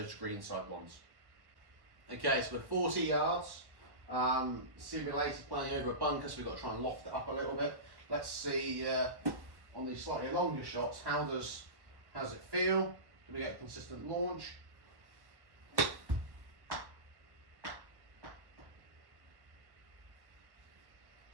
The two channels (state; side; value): late; left; 1.1 ms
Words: greenside ones. Okay, so we're 40 yards, simulator playing over a bunker, so we've got to try and loft it up a little bit. Let's see on these slightly longer shots, how does it feel? Do we get a consistent launch?